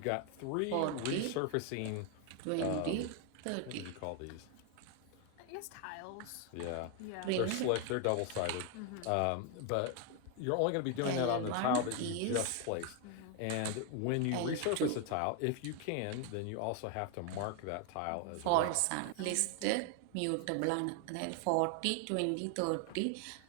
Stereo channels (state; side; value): different; both; correlation 0.01